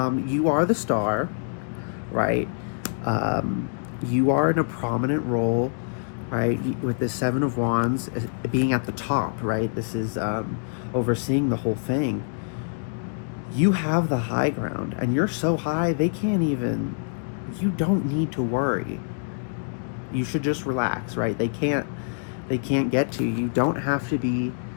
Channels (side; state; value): right; silent; digital silence